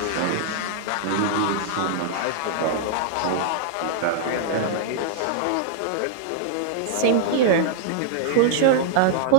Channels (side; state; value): both; different; correlation -0.01